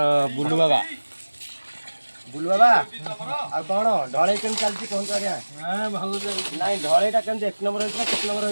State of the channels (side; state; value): both; inverted; correlation -1.00